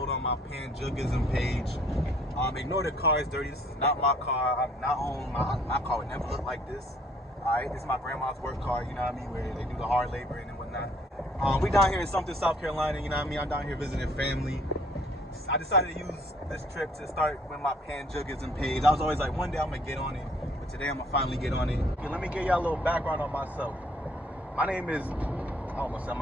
on my Pan-Juggism page. Ignore the car is dirty. This is not my car. I'm not on my car would never look like this. Alright, this is my grandma's work car, you know what I mean, where they do the hard labor and whatnot. We down here in something, South Carolina, you know what I mean? I'm down here visiting family. I decided to use this trip to start with my Pan-Juggism page. I was always like, one day I'm gonna get on it. Today I'm gonna finally get on it. Okay, let me give y'all a little background on myself. My name is, I almost said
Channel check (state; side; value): normal; both; correlation 0.60